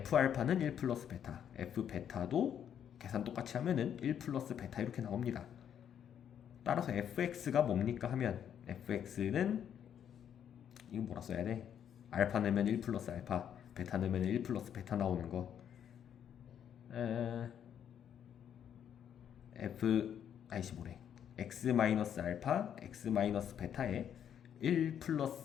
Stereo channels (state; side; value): quieter; right; 9.1 dB